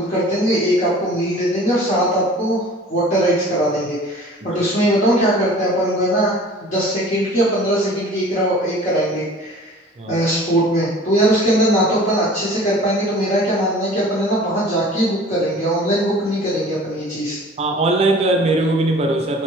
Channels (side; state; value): both; normal; correlation 0.46